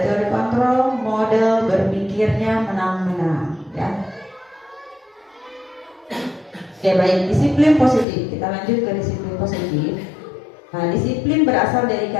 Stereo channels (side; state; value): right; drops out; at 8.1 s